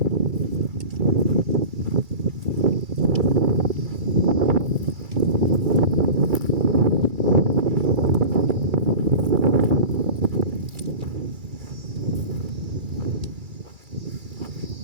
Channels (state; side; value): late; left; 2.3 ms